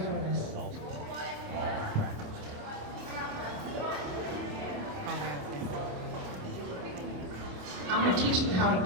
for this. I'm going to teach them how to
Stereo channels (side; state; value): left; late; 27 ms